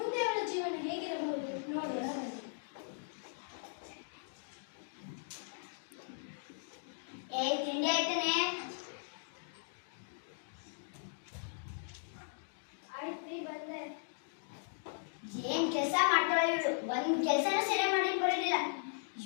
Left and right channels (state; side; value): silent; right; digital silence